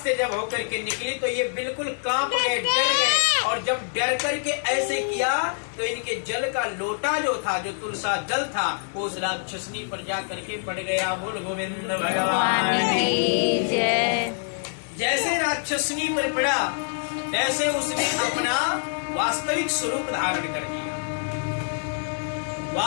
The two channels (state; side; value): silent; right; digital silence